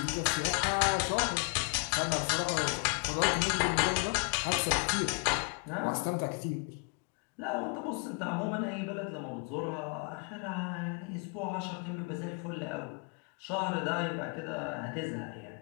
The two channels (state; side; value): quieter; right; 35.5 dB